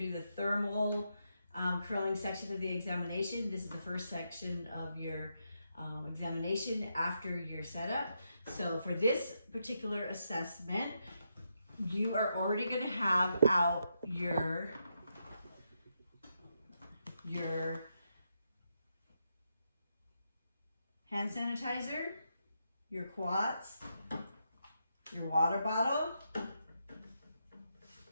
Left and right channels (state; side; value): inverted; both; correlation -0.83